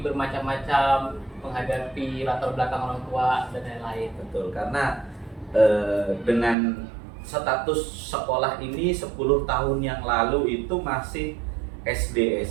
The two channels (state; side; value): drops out; left; at 6.6 s